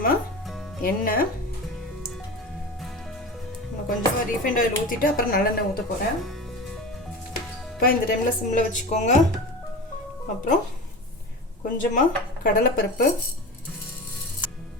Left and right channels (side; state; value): both; normal; correlation 0.30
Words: எண்ணெய், கொஞ்சமாக ரீஃபைண்ட் ஆயில் ஊற்றிட்டு அப்புறம் நல்லெண்ணெய் ஊற்ற போகிறேன். இப்போ இந்த டைமில் சிம்மில் வச்சுக்கோங்க. அப்புறம் கொஞ்சமாக கடலைப்பருப்பு,